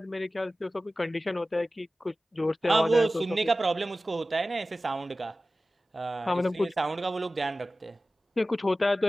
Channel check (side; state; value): both; normal; correlation 0.96